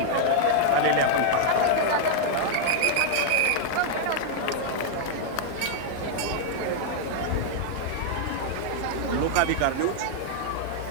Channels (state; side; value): different; both; correlation -0.01